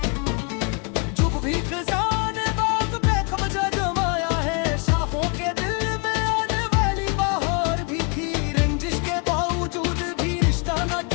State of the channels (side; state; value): right; quieter; 34.0 dB